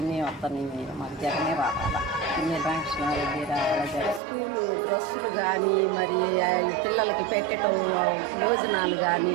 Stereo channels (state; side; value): drops out; left; at 4.2 s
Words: వస్తున్నాయి. మాకు జగనే రావాలా, పిన్నెల్లి రామకృష్ణారెడ్డి రావాలా. స్కూలు డ్రెస్సులు కానీ, మరి పిల్లలకి పెట్టడం భోజనాలు కానీ